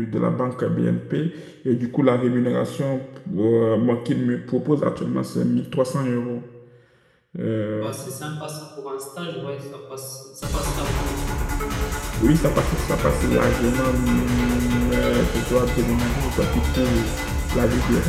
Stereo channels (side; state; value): both; identical; correlation 1.00